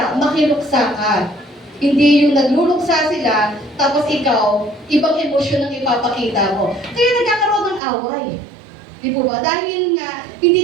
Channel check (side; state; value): left; drops out; at 7.8 s